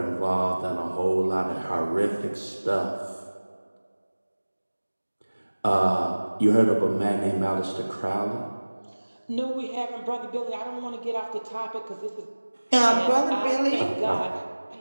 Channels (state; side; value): inverted; both; correlation -1.00